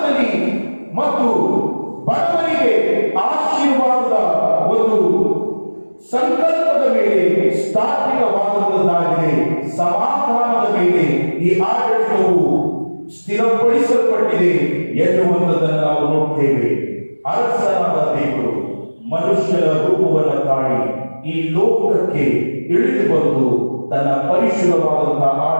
ಮತ್ತು ಬಡವರಿಗೆ ಆಶೀರ್ವಾದದ ಒಂದು ಸಂಕಲ್ಪದ ಮೇಲೆ ಸ್ಥಾಪಿತವಾದಂಥದ್ದಾಗಿದೆ. ಸಮಾಧಾನದ ಮೇಲೆ ಈ ಆಡಳಿತವು ಸ್ಥಿರಪಡಿಸಲ್ಪಟ್ಟಿದೆ ಎನ್ನುವಂಥದ್ದನ್ನು ನಾವು ನೋಡ್ತೇವೆ. ಅರಸನಾದ ದೇವರು ಮನುಷ್ಯರ ರೂಪವನ್ನು ತಾಳಿ ಈ ಲೋಕಕ್ಕೆ ಇಳಿದು ಬಂದು ತನ್ನ ಪರಿಶುದ್ಧವಾದಂತಹ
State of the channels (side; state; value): both; inverted; correlation -1.00